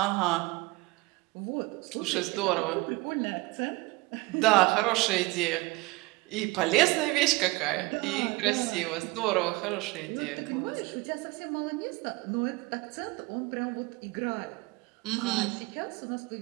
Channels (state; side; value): quieter; left; 23.2 dB